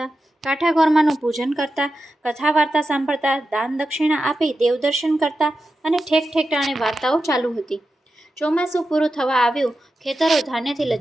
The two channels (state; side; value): normal; both; correlation 0.90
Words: કાંઠા ગોરમાનું પૂજન કરતા, કથા વાર્તા સાંભળતા, દાન દક્ષિણા આપી દેવદર્શન કરતા અને ઠેક ઠેકાણે વાર્તાઓ ચાલુ હતી। ચોમાસું પૂરું થવા આવ્યું, ખેતરો ધાન્યથી